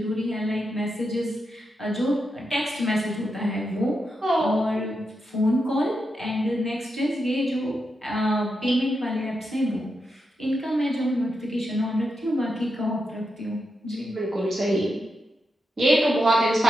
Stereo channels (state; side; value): normal; both; correlation 0.86